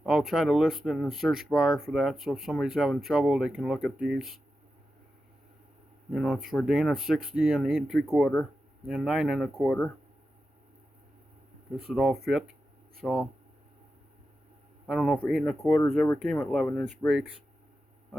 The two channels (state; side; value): normal; both; correlation 0.90